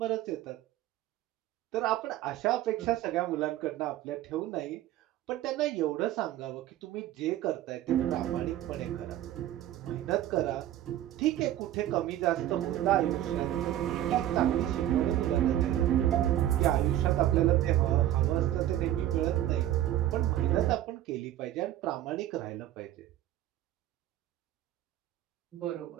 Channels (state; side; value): quieter; left; 13.0 dB